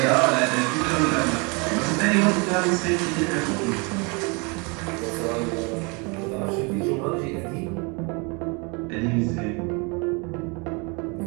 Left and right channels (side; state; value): left; quieter; 31.0 dB